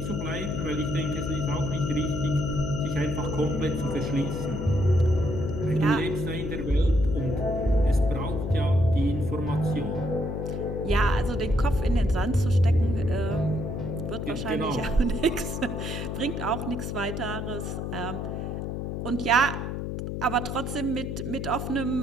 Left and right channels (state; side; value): noise; left; hum, 4 dB below the sound